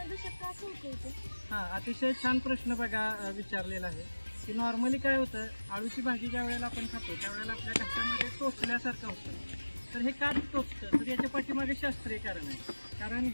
शक्य असं होतं? हा, अतिशय छान प्रश्न बघा विचारलेला आहे की नॉर्मली काय होतं, आळूची भाजी ज्या वेळेला आपण खातो त्यावेळेला आपल्या घशामध्ये टोचल्यासारखं होतं। तर हे का टोचतं तर याच्या पाठीमागे शास्त्रीय कारण आहे। कारण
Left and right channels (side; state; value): both; inverted; correlation -1.00